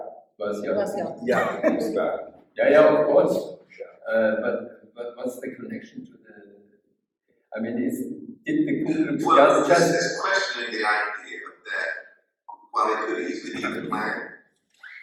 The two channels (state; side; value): identical; both; correlation 1.00